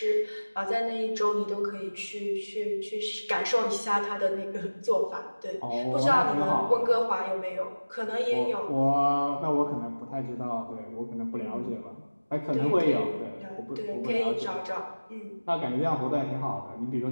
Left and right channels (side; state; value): both; inverted; correlation -1.00